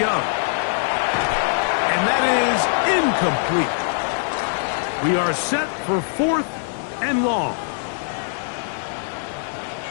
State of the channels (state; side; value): silent; right; 64 dB below the other